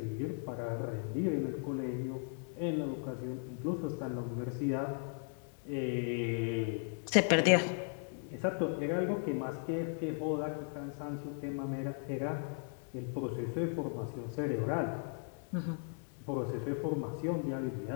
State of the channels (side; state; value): right; silent; 53 dB below the other